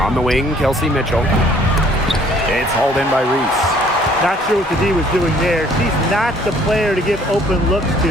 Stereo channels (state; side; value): normal; both; correlation 0.59